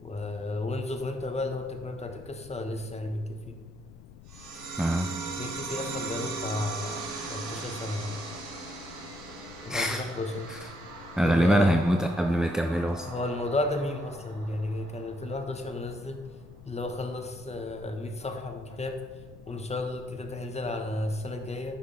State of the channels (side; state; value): left; noise; rumble, 18 dB below the sound